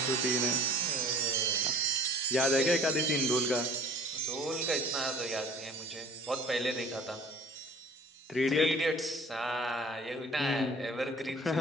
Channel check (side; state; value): both; normal; correlation 0.48